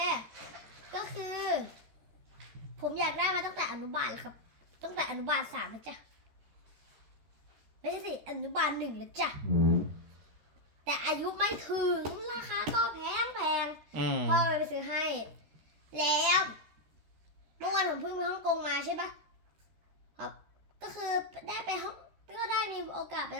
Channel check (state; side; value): late; left; 13 ms